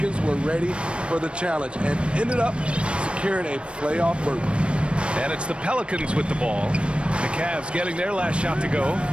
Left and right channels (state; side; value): late; left; 0.058 ms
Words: were ready for the challenge and ended up securing a playoff berth. And it's the Pelicans with the ball. The Cavs getting their last shot to go.